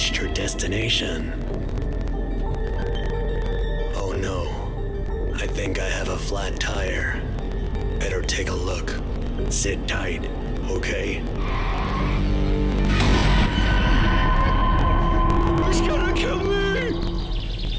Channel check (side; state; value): both; identical; correlation 1.00